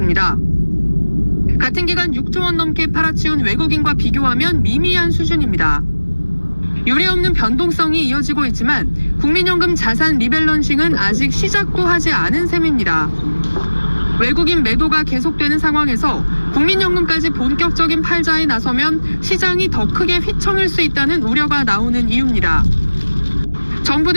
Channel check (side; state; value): both; inverted; correlation -1.00